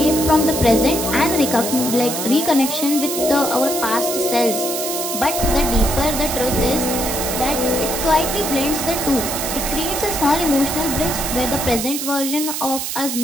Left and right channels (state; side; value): noise; right; hiss, 4 dB below the sound